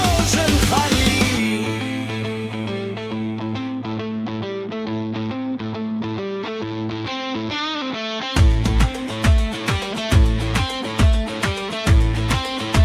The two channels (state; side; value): identical; both; correlation 1.00